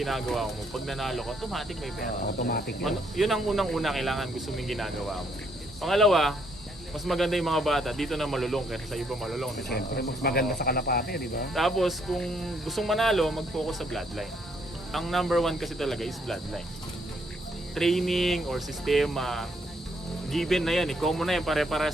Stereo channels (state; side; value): normal; both; correlation 0.71